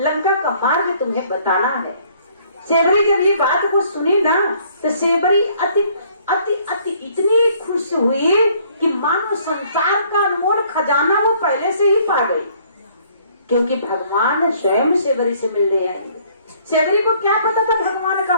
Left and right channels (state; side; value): inverted; both; correlation -0.61